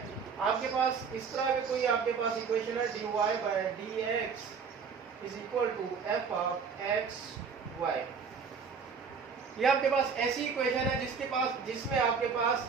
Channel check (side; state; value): left; quieter; 5.8 dB